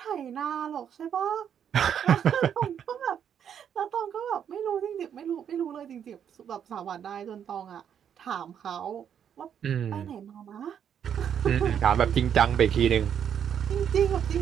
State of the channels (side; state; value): left; quieter; 8.6 dB